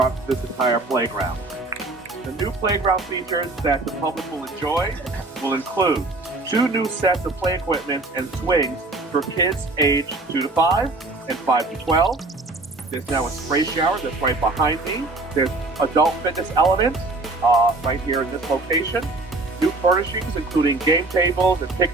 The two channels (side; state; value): left; quieter; 3.2 dB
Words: this entire playground. The new playground features that the public will enjoy will include 2 new sets of play equipment and swings for kids aged 2 to 5 and 5 to 12. There's now a spray shower that's right behind me. There's adult fitness elements right here in this location. New furnishings, including game tables and